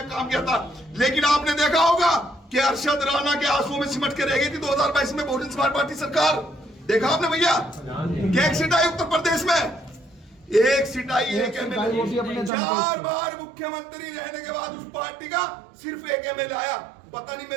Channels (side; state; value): left; drops out; at 12.5 s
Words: काम किया था। लेकिन आपने देखा होगा कि अरशद राणा के आंसुओं में सिमट के रह गई थी 2022 में बहुजन समाज पार्टी सरकार। देखा आपने भैया, एक सीट आई उत्तर प्रदेश में, एक सीट आई, एक एमएलए। 4 बार मुख्यमंत्री रहने के बाद उस पार्टी का सिर्फ एक एमएलए आया। पता नहीं